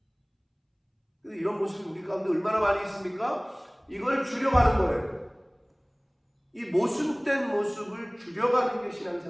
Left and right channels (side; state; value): both; identical; correlation 1.00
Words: 이런 모습이 우리 가운데 얼마나 많이 있습니까? 이걸 줄여가는 거예요. 이 모순된 모습을 줄여가는 게